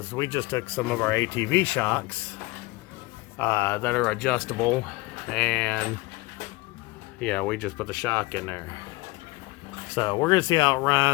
we just took some of our ATV shocks that are adjustable, and we just put the shock in there. So we're gonna see how it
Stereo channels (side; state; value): right; quieter; 21.1 dB